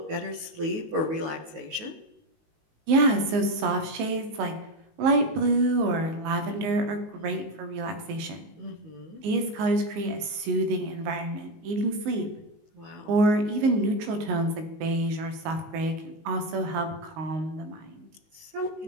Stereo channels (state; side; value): late; left; 19 ms